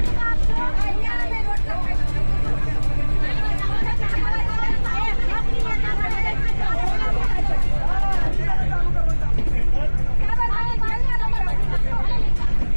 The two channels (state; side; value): inverted; both; correlation -1.00